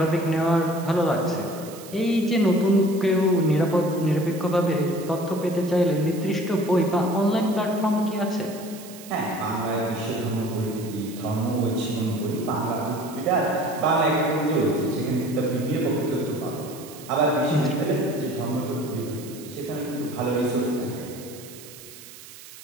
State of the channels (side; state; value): right; noise; hiss, 17 dB below the sound